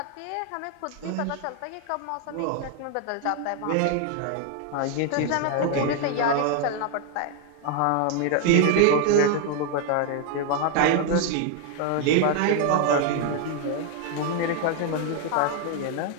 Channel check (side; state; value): both; different; correlation 0.00